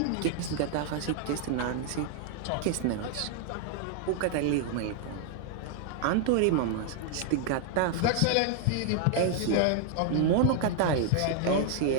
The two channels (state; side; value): different; both; correlation 0.00